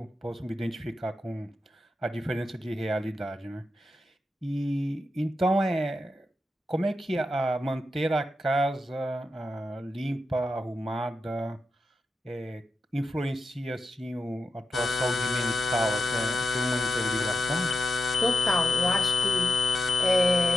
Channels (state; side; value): normal; both; correlation 0.87